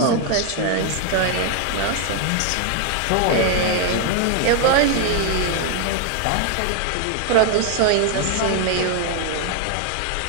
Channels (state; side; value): different; both; correlation 0.00